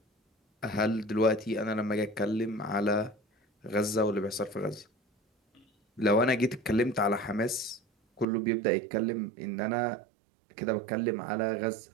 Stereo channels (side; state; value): left; drops out; at 8.2 s